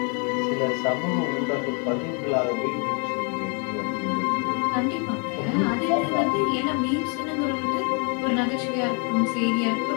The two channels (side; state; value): right; quieter; 37.2 dB